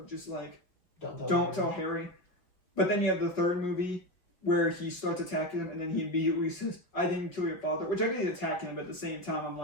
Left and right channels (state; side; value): late; right; 5.6 ms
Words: just like, don't tell Harry. But then you have the third movie where he starts attacking him and then he immediately says, I didn't kill your father, which I get he's attacking him, but at the same time I'm